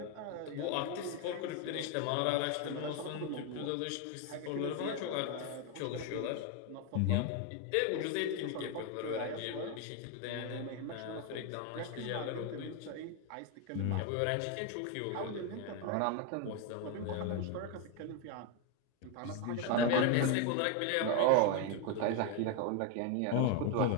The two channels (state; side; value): different; both; correlation 0.01